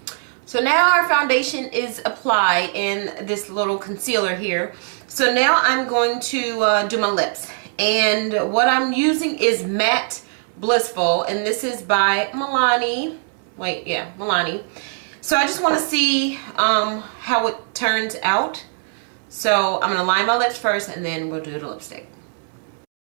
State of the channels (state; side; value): silent; left; 65 dB below the other